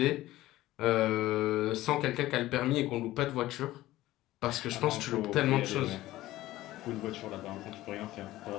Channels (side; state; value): right; quieter; 16.2 dB